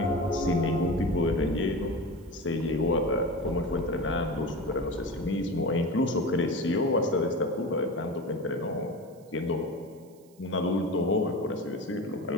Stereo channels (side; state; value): right; noise; hiss, 30 dB below the sound